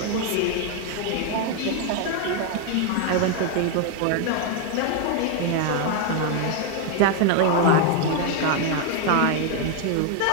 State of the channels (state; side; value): different; both; correlation 0.01